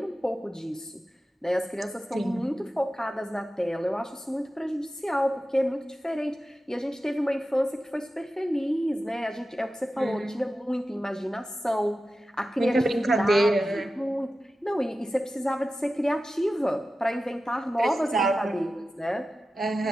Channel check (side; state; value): both; normal; correlation 0.93